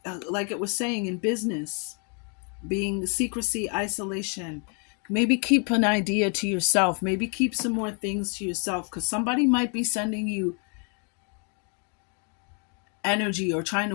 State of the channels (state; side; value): quieter; right; 38.4 dB